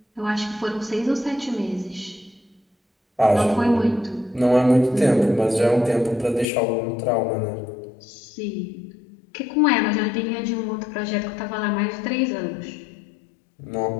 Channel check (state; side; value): drops out; right; at 6.5 s